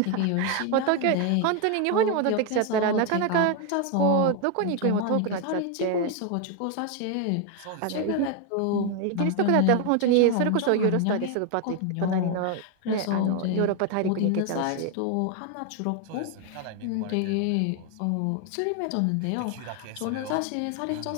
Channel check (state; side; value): different; both; correlation 0.01